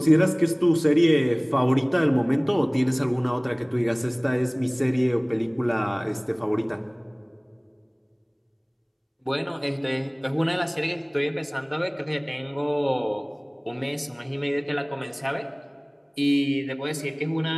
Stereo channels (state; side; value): identical; both; correlation 1.00